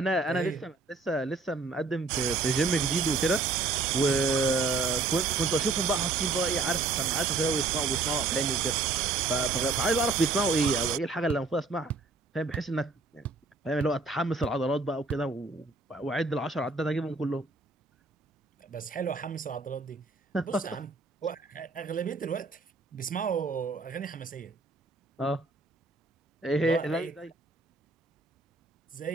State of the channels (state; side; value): quieter; left; 3.7 dB